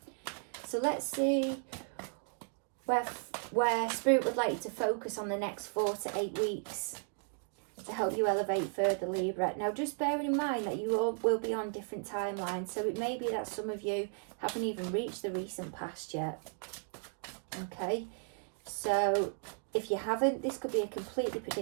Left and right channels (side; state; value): left; silent; 54 dB below the other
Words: So let's see where Spirit would like you to focus on the next 4 to 8 weeks to help you elevate further, Libra. Now, just bearing in mind that you all will be on different timelines, so it may be that some of you haven't even reached the recent past yet. Okay, so if you haven't, this could be a completely